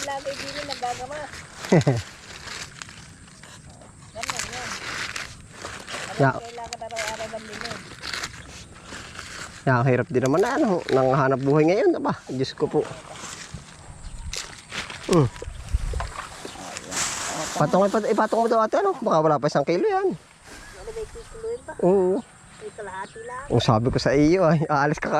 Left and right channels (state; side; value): identical; both; correlation 1.00